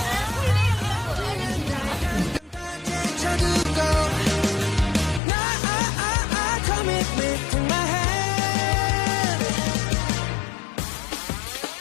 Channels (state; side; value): drops out; right; at 5.2 s